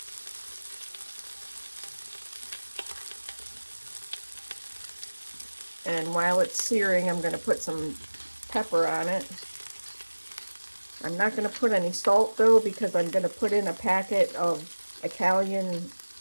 And while it's searing, I'm going to put some pepper on it. I'm not going to put any salt though, because I'm going to put in a packet of Italian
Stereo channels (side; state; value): both; inverted; correlation -1.00